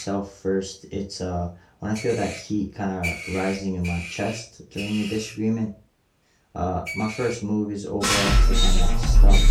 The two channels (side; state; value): both; identical; correlation 1.00